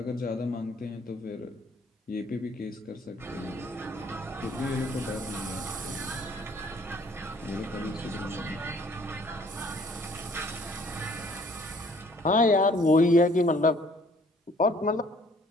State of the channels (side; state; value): both; normal; correlation 0.58